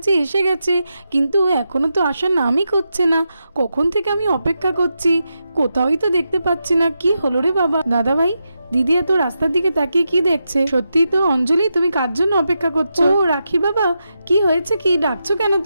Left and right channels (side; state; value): both; inverted; correlation -0.87